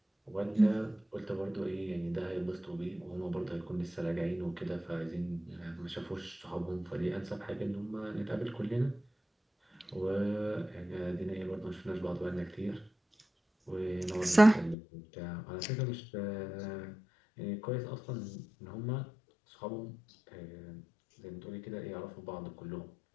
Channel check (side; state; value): right; drops out; at 14.8 s